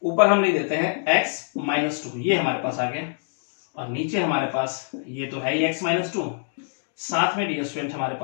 ऊपर हम लिख देते हैं x - 2, ये हमारे पास आ गया और नीचे हमारे पास ये तो है ही x - 2, साथ में डियर स्टूडेंट हमारे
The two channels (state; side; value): silent; right; digital silence